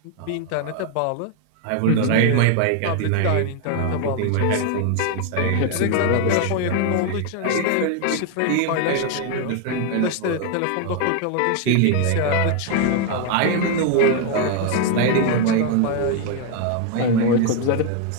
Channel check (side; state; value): both; different; correlation 0.00